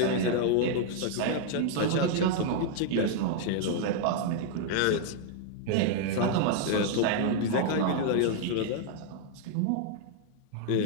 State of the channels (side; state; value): both; different; correlation 0.00